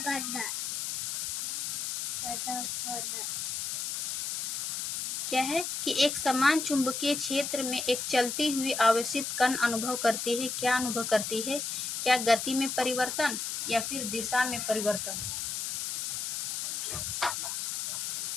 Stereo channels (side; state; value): left; noise; hiss, 2 dB below the sound